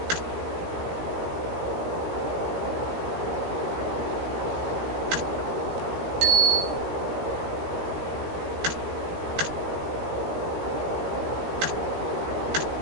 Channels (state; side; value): late; left; 17 ms